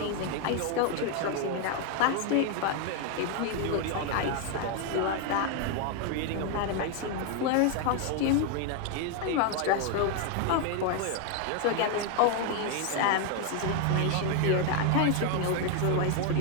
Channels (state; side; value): different; both; correlation 0.01